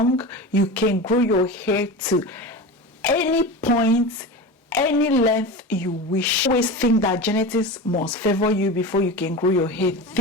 you can grow your hair to any point, any length you wish. Always think that genetics must favor you before you can grow your hair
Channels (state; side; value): normal; both; correlation 0.28